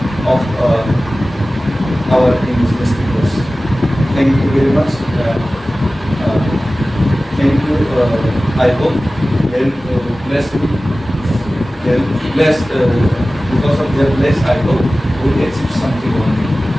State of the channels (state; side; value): normal; both; correlation 0.96